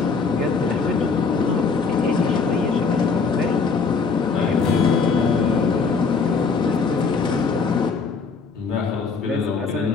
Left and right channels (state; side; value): quieter; right; 4.9 dB